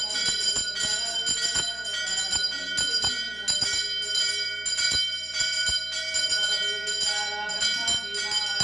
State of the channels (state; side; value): noise; right; hum, 23 dB below the sound